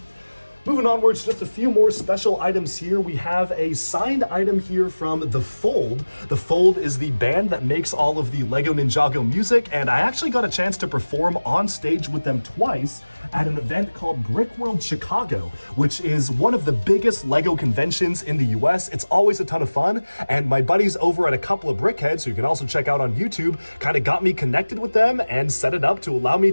Moving onwards, just a few more special items here. We have a signed item here from The Fold. The Fold is the band that makes all of the Lego Ninjago music, and I actually got a chance to perform on stage with them twice at an event called Brickworld Chicago, which is one of the biggest Lego conventions in the US. It's always a ton of fun, and my buddies over at a couple of Brickheads, who you can also check out on YouTube, kind of got me connected with them and set it up to allow me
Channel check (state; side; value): inverted; both; correlation -1.00